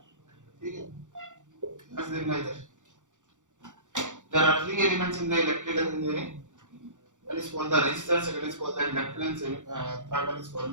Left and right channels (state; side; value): late; left; 0.86 ms